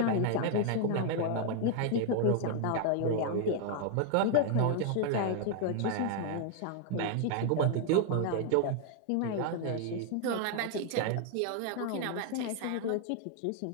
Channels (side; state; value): both; different; correlation 0.00